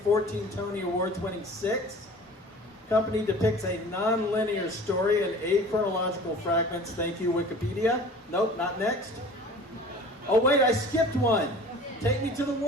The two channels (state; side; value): normal; both; correlation 0.43